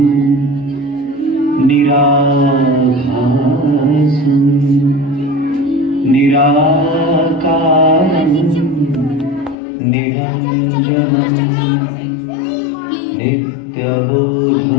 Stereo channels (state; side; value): drops out; right; at 9.6 s